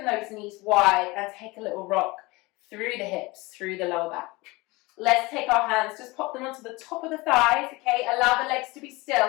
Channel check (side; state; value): right; quieter; 23.2 dB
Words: those knees wide and take a little rock through the hips, through the lower back. Let's take our hands, just pop them onto the top of the thighs, okay? Allow the legs to be